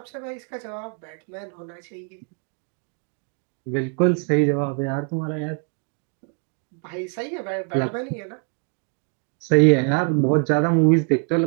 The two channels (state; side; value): quieter; left; 38.7 dB